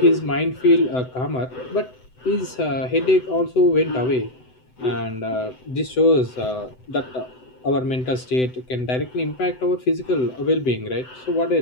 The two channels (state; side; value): late; right; 7.9 ms